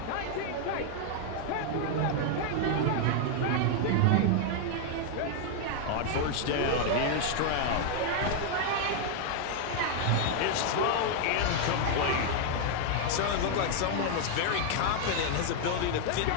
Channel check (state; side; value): different; both; correlation 0.00